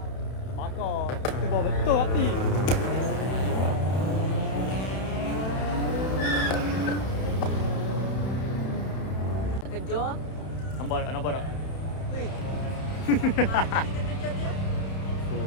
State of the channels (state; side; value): late; right; 31 ms